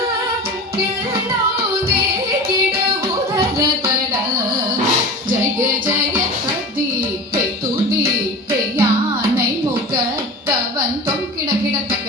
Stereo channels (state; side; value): normal; both; correlation 0.33